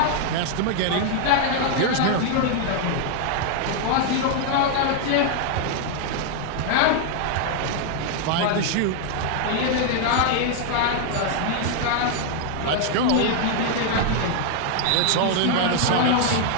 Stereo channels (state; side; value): different; both; correlation 0.00